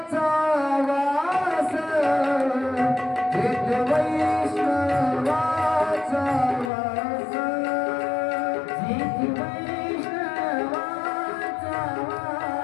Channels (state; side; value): drops out; right; at 6.7 s